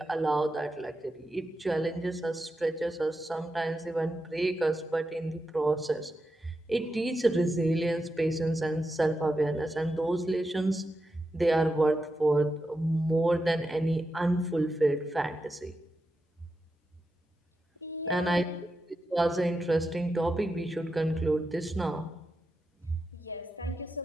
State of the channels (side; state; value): both; normal; correlation 0.88